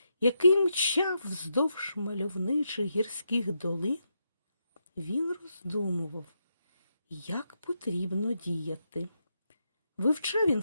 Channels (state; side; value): inverted; both; correlation -0.83